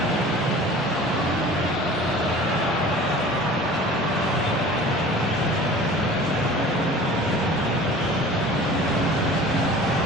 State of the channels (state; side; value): normal; both; correlation 0.43